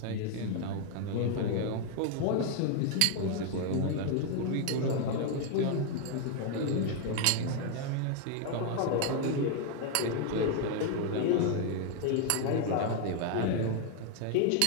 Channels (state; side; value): different; both; correlation 0.00